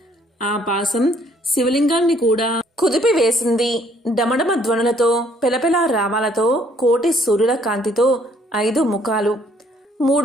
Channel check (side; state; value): both; normal; correlation 0.64